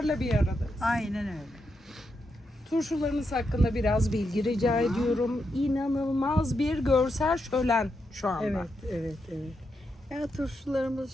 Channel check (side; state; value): both; normal; correlation 0.84